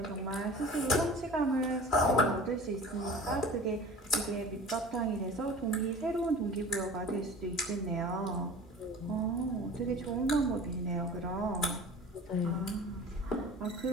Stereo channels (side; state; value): both; normal; correlation 0.41